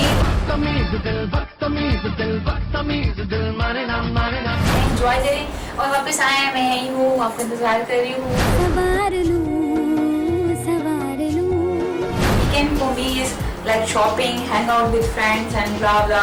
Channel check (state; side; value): identical; both; correlation 1.00